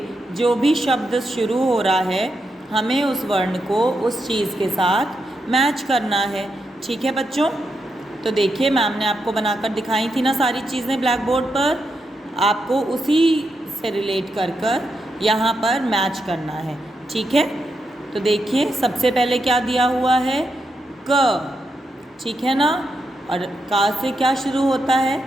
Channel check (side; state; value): both; normal; correlation 0.84